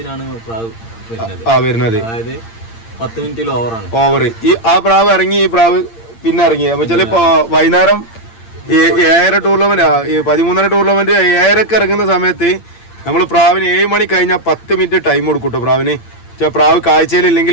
പ്രാവ് വരുന്നത്. അതായത് 10 മിനിറ്റിൽ ഓവറാണ്. ഓവർ ഈ ആ പ്രാവ് ഇറങ്ങി, ഈ പ്രാവ് പിന്നെ ഇറങ്ങി. അപ്പൊ വെച്ചാൽ ഇപ്പൊ വൈകുന്നേരം 7 ടൂർണമെന്റ് 13 ടൂർണമെന്റ് 7 ഇറങ്ങുന്ന സമയത്ത് നമ്മൾ പ്രാവിന് 7 മണി കഴിഞ്ഞാൽ 10 മിനിറ്റ് ടൈം കൊടുക്കൂട്ടോ പ്രാവിന്. പ്രാവ്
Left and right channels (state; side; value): late; right; 8.7 ms